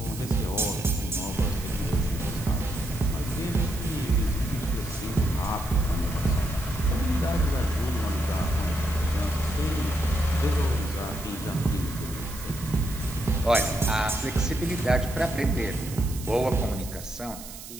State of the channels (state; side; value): noise; right; hiss, 13 dB below the sound